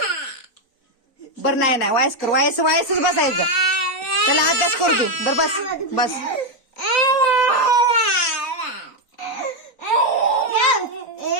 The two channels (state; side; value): late; right; 3.9 ms